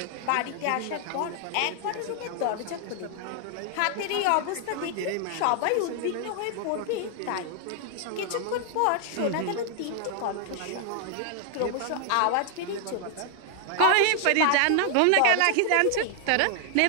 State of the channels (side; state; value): both; different; correlation 0.00